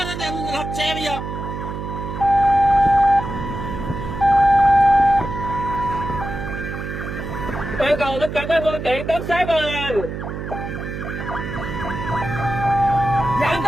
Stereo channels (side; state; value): right; noise; hum, 6 dB below the sound